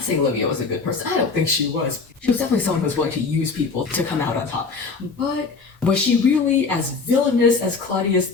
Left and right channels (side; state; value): right; quieter; 4.6 dB